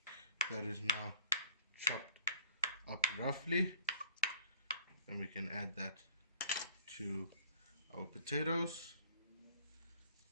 That is now chopped up roughly. And we can add that to our potatoes.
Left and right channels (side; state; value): both; inverted; correlation -0.54